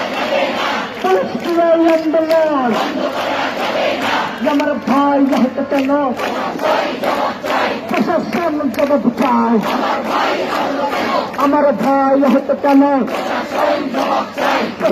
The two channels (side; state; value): both; identical; correlation 1.00